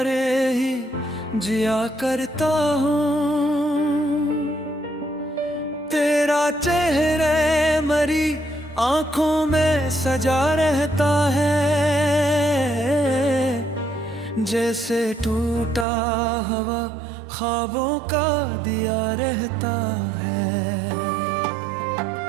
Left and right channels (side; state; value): left; drops out; at 15.9 s